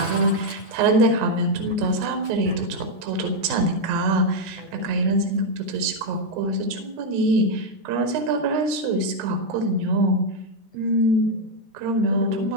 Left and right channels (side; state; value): left; late; 10 ms